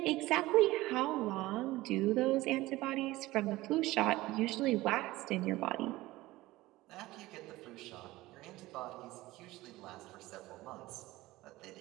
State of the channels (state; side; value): quieter; left; 18.4 dB